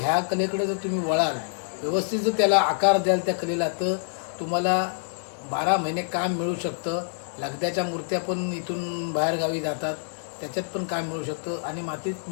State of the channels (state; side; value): silent; right; 61 dB below the other